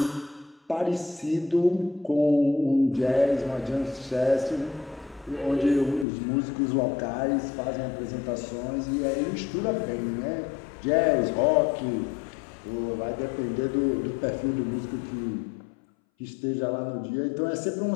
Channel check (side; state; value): right; drops out; at 6.1 s